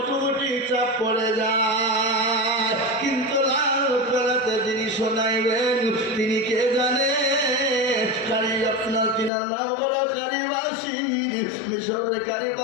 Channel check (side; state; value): right; drops out; at 9.3 s